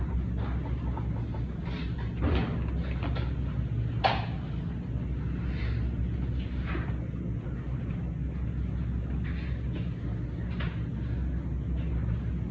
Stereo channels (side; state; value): both; identical; correlation 1.00